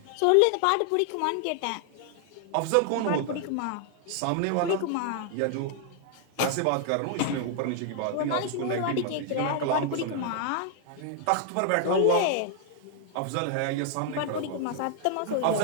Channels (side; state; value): both; different; correlation 0.00